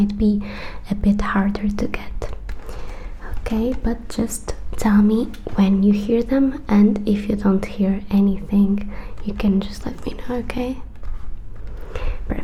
be a bit harder to get, okay? But just tell me when you hear them, and if you don't hear anything, you can just let me know, okay?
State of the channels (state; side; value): identical; both; correlation 1.00